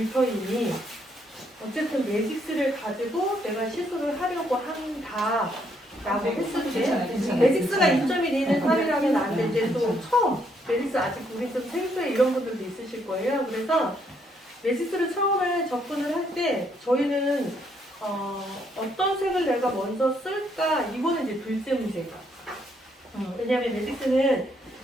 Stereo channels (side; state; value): both; normal; correlation 0.72